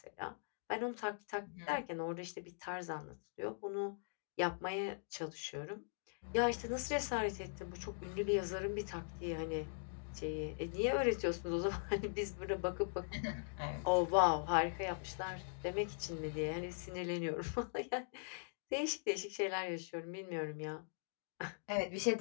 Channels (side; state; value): right; silent; digital silence